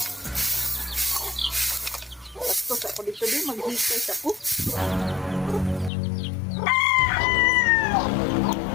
Tapos ako dito din maghikay sa ko.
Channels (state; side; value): drops out; right; at 5.9 s